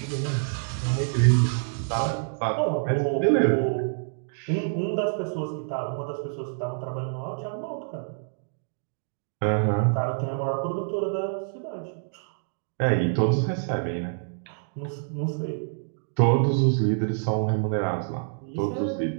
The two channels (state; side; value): silent; left; digital silence